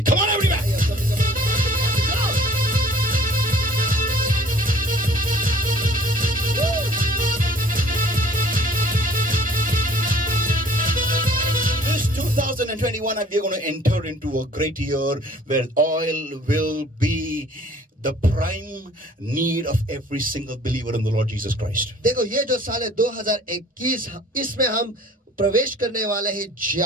Come on, everybody. This 2021, we are going to enter into a great year where oil will be the prime need of every single believer in the Lord Jesus Christ. देखो, ये जो साल है 2021, इसमें हम प्रवेश करने वाले हैं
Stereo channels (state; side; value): normal; both; correlation 0.53